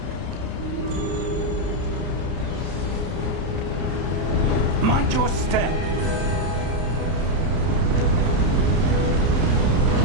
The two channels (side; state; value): left; late; 31 ms